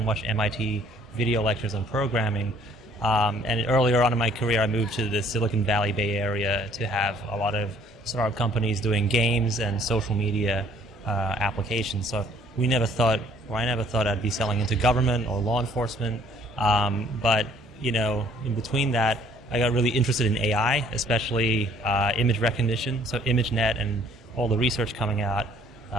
watch MIT video lectures on programming. And earlier on in my career, I moved to the Silicon Valley Bay Area to have a lot of startup companies doing games and social media applications. So I never thought I'd be selling into government or law enforcement. But in between that, I got really interested in AI, especially image recognition. So ImageNet and all the research coming out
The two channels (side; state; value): both; normal; correlation 0.59